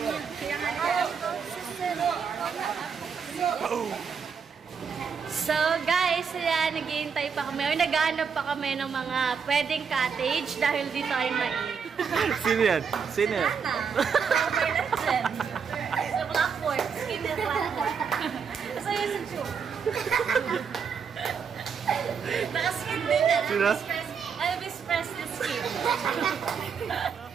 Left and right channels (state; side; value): quieter; left; 6.4 dB